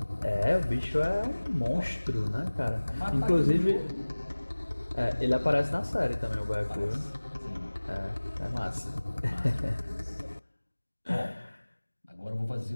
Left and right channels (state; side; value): inverted; both; correlation -1.00